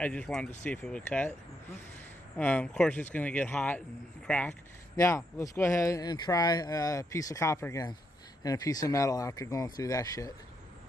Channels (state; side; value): normal; both; correlation 0.78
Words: just wanted to see if it would cut. Of course, it's going to get hot and crack. Now, let's go ahead and try a piece of copper again and a piece of metal after going through that shit.